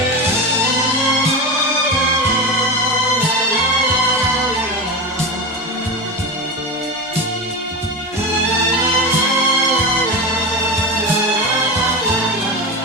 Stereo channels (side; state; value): both; normal; correlation 0.22